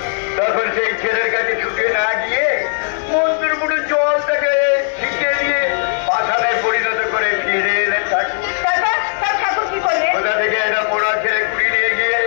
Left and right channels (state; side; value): silent; right; digital silence